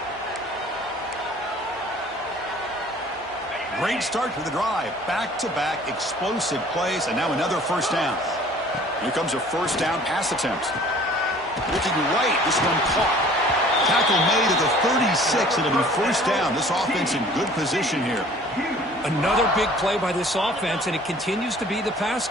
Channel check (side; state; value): both; normal; correlation 0.51